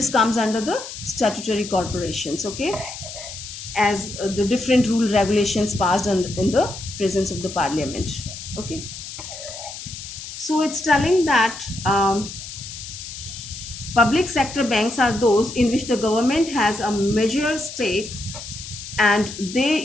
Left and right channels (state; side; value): noise; left; hiss, 11 dB below the sound